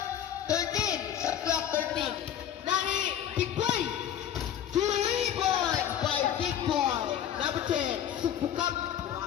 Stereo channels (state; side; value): quieter; right; 10.1 dB